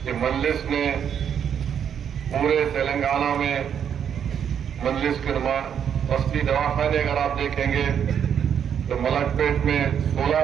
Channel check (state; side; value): quieter; left; 8.4 dB